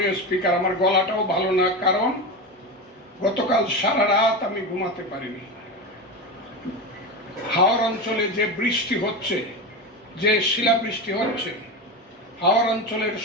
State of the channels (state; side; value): normal; both; correlation 0.20